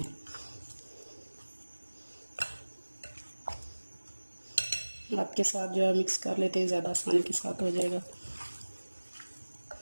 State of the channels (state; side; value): inverted; both; correlation -1.00